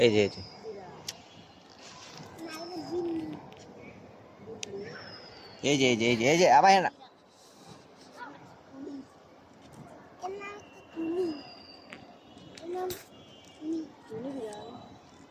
এই যে এই যে এই যে এই যে এই যে এই যে আবার না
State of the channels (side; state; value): both; identical; correlation 1.00